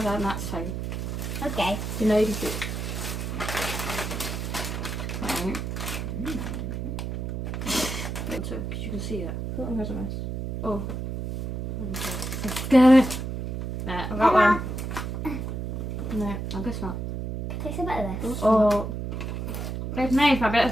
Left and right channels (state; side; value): noise; right; hum, 4 dB below the sound